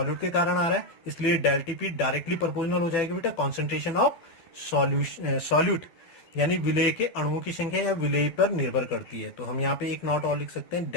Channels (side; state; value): right; late; 12 ms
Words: के कारण आ रहा है, इसलिए डेल टीपी डायरेक्टली प्रोपोर्शनल हो जाएगी बेटा कॉन्सेंट्रेशन ऑफ सॉल्यूट, यानी विलेय के अणुओं की संख्या या विलेय पर निर्भर करती है। तो हम यहाँ पे एक नोट और लिख सकते हैं,